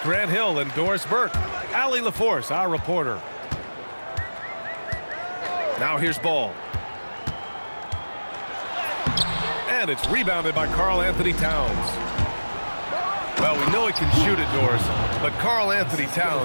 Grant Hill and Doris Burke. Allie LaForce, our reporter. Now here's ball. And it's rebounded by Karl Anthony Towns. Well, we know he can shoot it, Doris, but Karl Anthony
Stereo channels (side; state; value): both; inverted; correlation -1.00